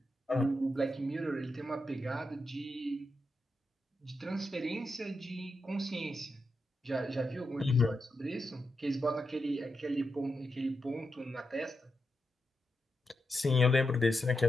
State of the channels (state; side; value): normal; both; correlation 0.86